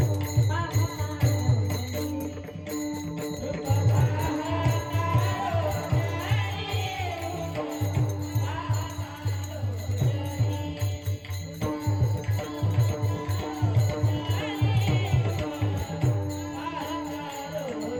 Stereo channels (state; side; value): identical; both; correlation 1.00